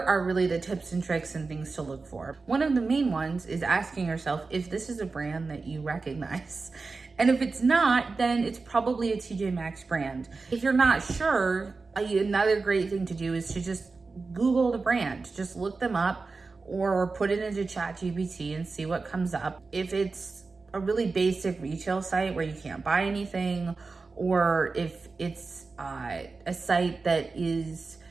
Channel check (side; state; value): left; quieter; 4.1 dB